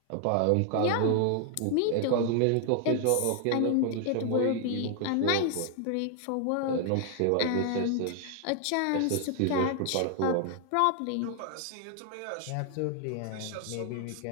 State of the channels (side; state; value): both; different; correlation 0.00